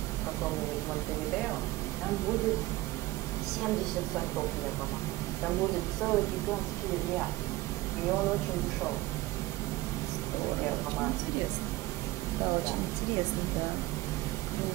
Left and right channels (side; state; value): left; quieter; 18.4 dB